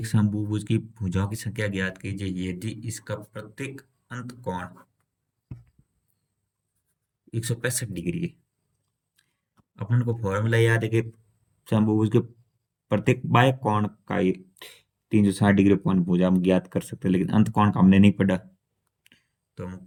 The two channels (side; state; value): both; identical; correlation 1.00